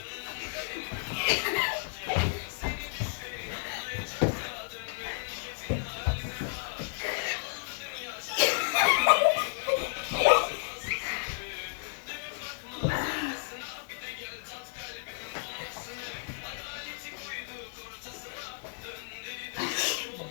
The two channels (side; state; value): right; silent; digital silence